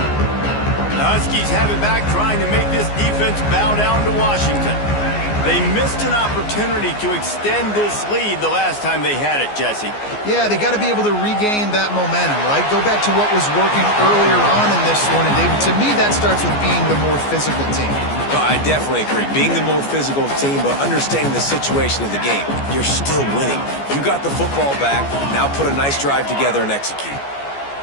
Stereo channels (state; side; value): late; right; 14 ms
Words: The Huskies have it back, trying to make this defense bow down to Washington. They missed an opportunity to extend this lead the last time they had it, Jesse. Yeah, they got to be able to regain that momentum, right? Go back to what was working earlier on in this one. And David, to me, that starts with being the more physical team. Well, I definitely agree. Being the more physical team, but understanding the situation of the game. You're still winning. You got the football back. Now put a nice drive together and execute.